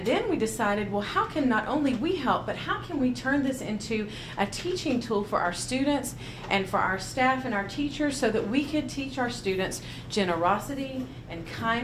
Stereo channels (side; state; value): both; identical; correlation 1.00